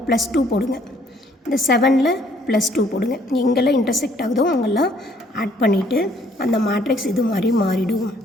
+2 போடுங்க. இந்த 7ல் +2 போடுங்க. எங்கெல்லாம் இன்டர்செக்ட் ஆகுதோ அங்கெல்லாம் ஆட் பண்ணிவிட்டு அந்த மேட்ரிக்ஸ் இது மாதிரி மாறிடும்.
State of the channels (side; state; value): both; normal; correlation 0.63